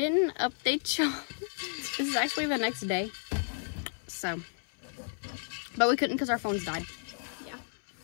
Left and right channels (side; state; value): right; silent; 56 dB below the other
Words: update y'all. This is actually the next day. So, but we couldn't because our phones died. Yeah.